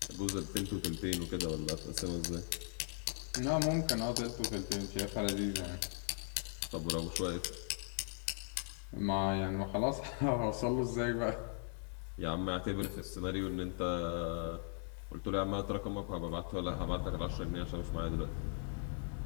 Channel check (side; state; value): right; silent; 52 dB below the other